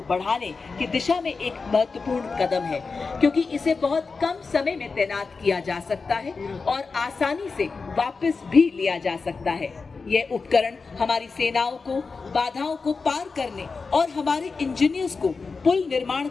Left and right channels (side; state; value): right; quieter; 4.5 dB